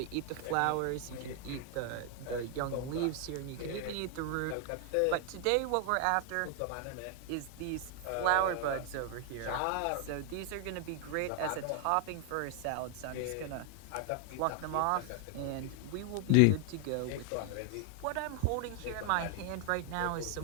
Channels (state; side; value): different; both; correlation 0.00